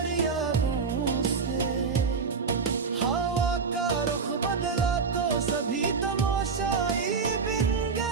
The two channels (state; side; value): quieter; left; 5.2 dB